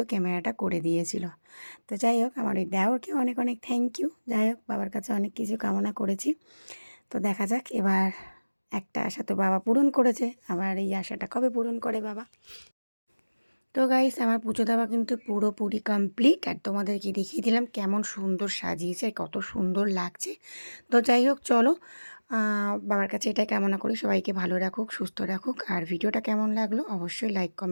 ক্যামেরাটা করে দিয়েছিল। তো যাই হোক, আমার ওই দেওরকে অনেক অনেক থ্যাংক ইউ। যাই হোক, বাবার কাছে অনেক কিছু কামনা করেছি। তো দেখা যাক, এবার একটা আশা তো বাবা পূরণ করেছে, আবার এই আশাটা কবে পূরণ করে বাবা। তো গাইস, আমার পুজো দেওয়া কিন্তু পুরোপুরি কমপ্লিট, আর তোমাদেরকে দেখিয়ে দিলাম কেমন সুন্দর সাজিয়েছে আর কত সুন্দর লাগছে। তো যাই হোক, চলো বাবার কাছে এটাই কামনা করি সবাইকে ভালো রাখুক, সুস্থ রাখুক। আর ভিডিওটা কেমন লাগলো অবশ্যই লাইক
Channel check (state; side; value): inverted; both; correlation -1.00